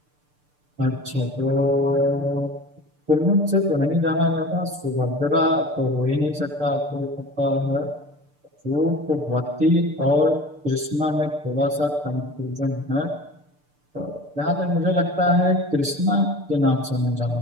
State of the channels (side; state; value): left; late; 6.7 ms